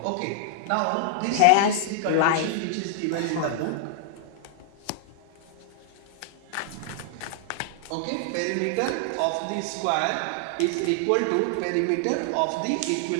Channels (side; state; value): both; different; correlation -0.01